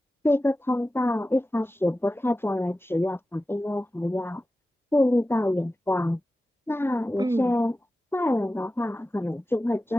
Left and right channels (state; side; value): normal; both; correlation 0.95